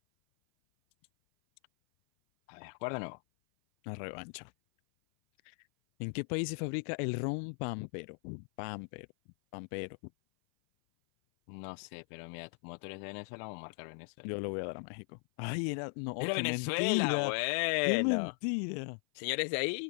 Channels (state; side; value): silent; right; 53 dB below the other